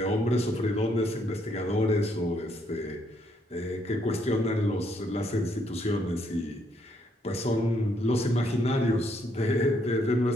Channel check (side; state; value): both; normal; correlation 0.72